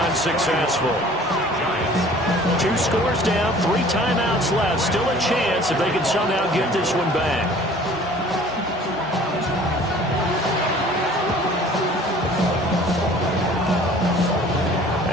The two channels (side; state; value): both; normal; correlation 0.50